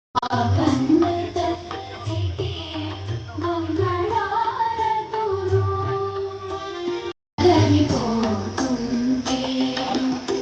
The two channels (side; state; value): both; identical; correlation 1.00